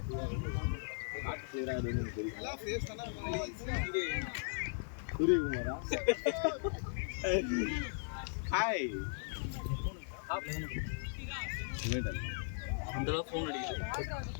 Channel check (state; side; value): silent; right; digital silence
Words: காட்டு செய்யறாது தெரியும் எல்லாம் ஃபேஸ் தானே சூரியகுமாரா ஹாய் அந்த அளவுக்கு ஃபோன் அடிக்குது.